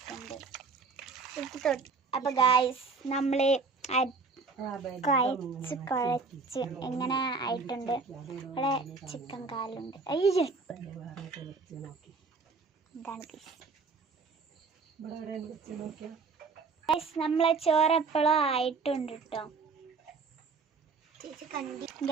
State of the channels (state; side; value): quieter; left; 4.5 dB